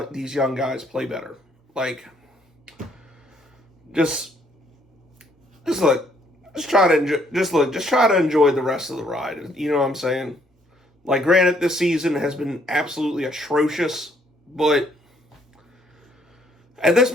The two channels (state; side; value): normal; both; correlation 0.67